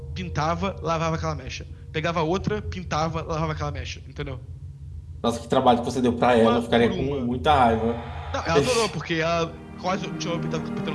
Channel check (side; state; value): both; identical; correlation 1.00